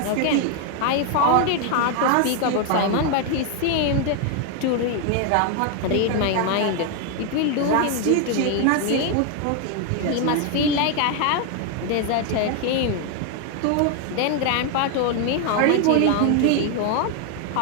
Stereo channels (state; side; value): different; both; correlation 0.01